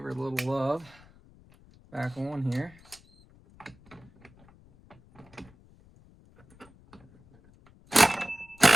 her a little love. Back on here.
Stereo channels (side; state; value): left; noise; rumble, 27 dB below the sound